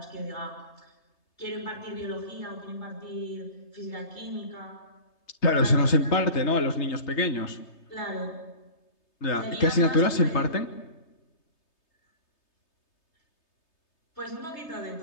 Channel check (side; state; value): right; late; 3.3 ms